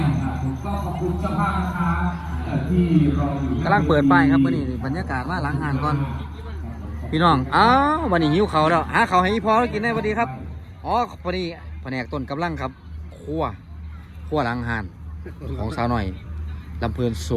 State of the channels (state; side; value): identical; both; correlation 1.00